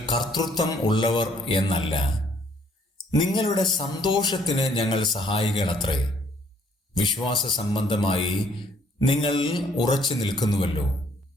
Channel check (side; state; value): both; normal; correlation 0.63